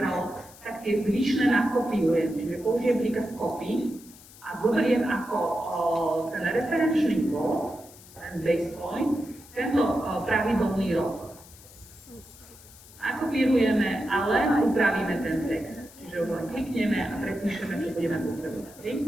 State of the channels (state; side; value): noise; left; hiss, 21 dB below the sound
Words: tak tie zvyšné nakopiujem. Čiže použijem príkaz copy a zoberiem ako ten referenčný kód, ten base point, tento pravidelný rok. Nakopírujeme a len upravíme ten text. Čiže už len klikneme a prepíšeme, čo budeme potrebovať.